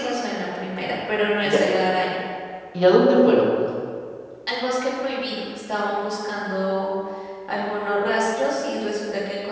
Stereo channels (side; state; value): both; identical; correlation 1.00